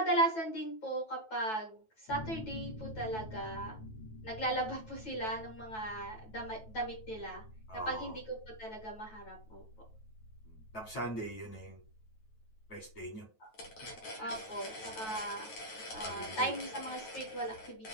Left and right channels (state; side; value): late; right; 9.2 ms